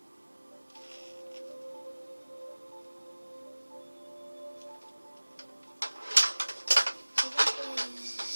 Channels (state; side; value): inverted; both; correlation -1.00